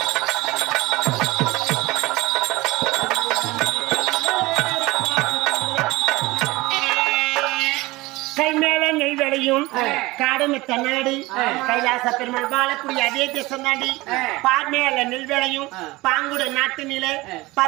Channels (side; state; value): left; quieter; 20.8 dB